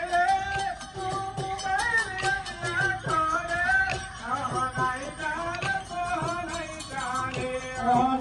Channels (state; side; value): identical; both; correlation 1.00